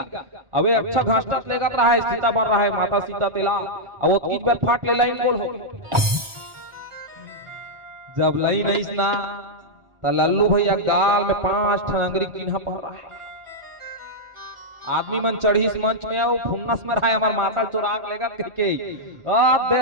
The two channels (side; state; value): left; late; 1.4 ms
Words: अबे अच्छा घसटत लेगा रहा है, सीता बन रहा है माता सीता तेला। अब वो तीन बार फाट ले लाइन गोल हो जब लाइन नहीं ना तो लल्लू भैया गाल में 5 ठन अंगरी चिन्ह पड़ रहा है। आदमी मन चढ़ी इस मंच में आओ फुन्नस में रहा है हमार माता चुराग लेगा कह के